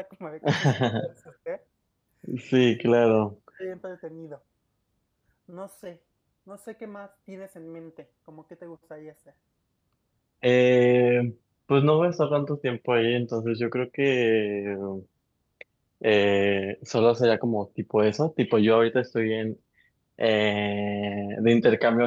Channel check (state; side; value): identical; both; correlation 1.00